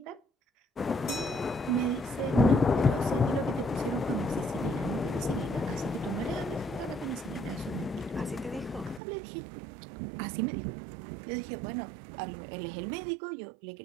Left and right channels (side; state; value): left; drops out; at 9.0 s